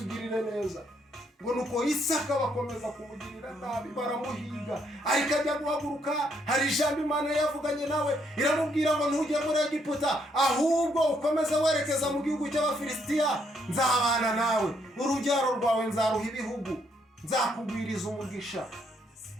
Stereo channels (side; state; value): both; normal; correlation 0.73